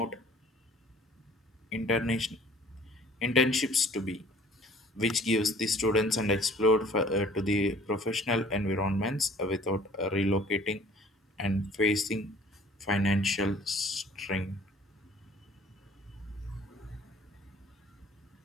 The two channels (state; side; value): normal; both; correlation 0.52